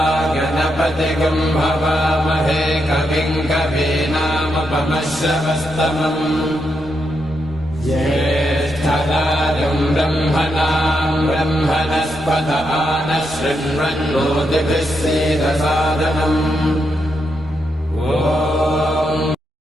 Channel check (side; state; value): both; normal; correlation 0.82